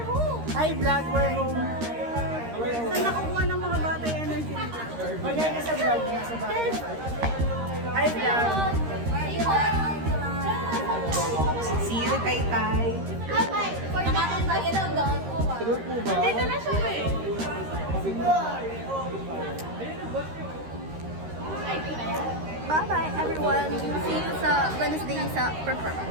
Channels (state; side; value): late; left; 13 ms